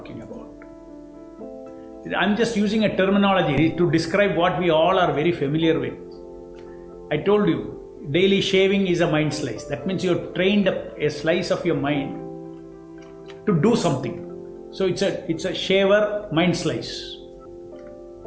about? I'm just using a terminology to describe what we all are very familiar with. I told you, daily shaving is a mind slice. That means you've trained a slice of your mind to do something. So it's a shaver mind slice.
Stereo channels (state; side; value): identical; both; correlation 1.00